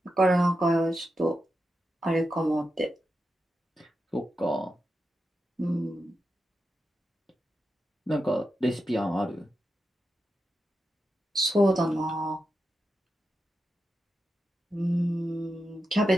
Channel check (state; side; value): normal; both; correlation 0.89